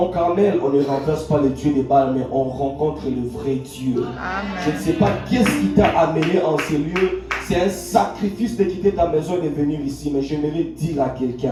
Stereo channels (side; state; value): both; identical; correlation 1.00